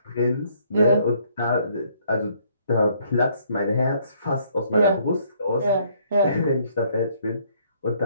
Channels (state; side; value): inverted; both; correlation -0.66